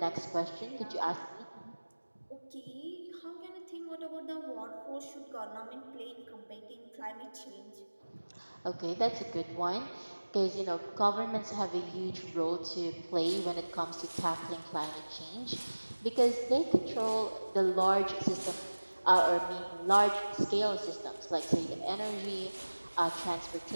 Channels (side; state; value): both; inverted; correlation -1.00